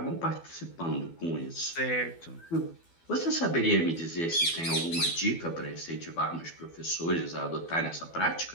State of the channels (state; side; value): late; right; 12 ms